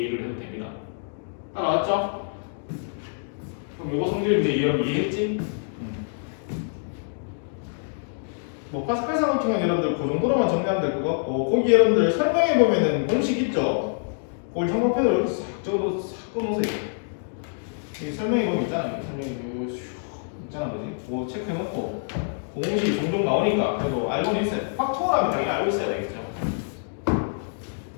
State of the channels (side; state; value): right; silent; digital silence